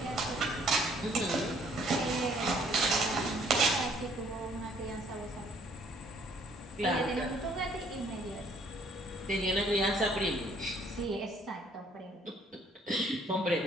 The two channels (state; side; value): normal; both; correlation 0.62